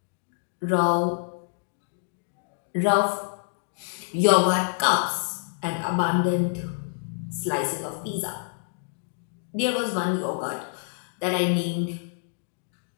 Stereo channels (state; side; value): silent; right; digital silence